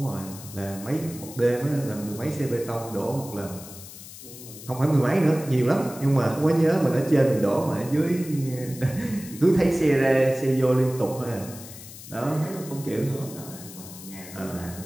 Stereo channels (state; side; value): noise; left; hiss, 15 dB below the sound